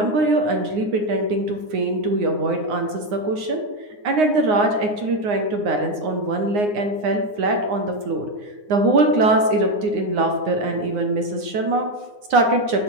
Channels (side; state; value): left; late; 9.7 ms